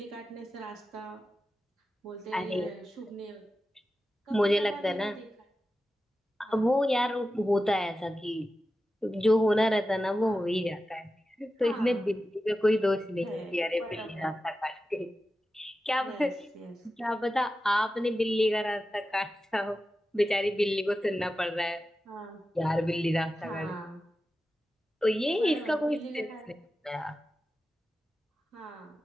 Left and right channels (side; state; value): both; normal; correlation 0.93